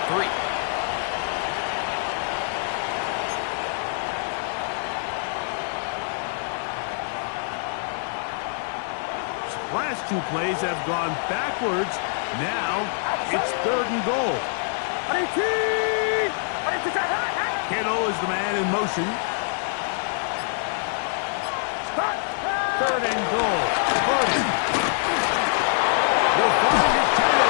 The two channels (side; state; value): right; silent; digital silence